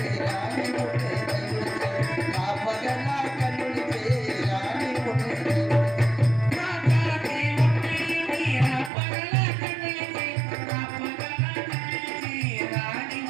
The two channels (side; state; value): left; drops out; at 8.9 s